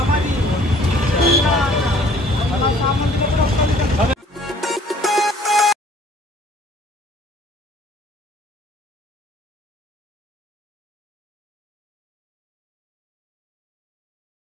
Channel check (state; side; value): normal; both; correlation 0.56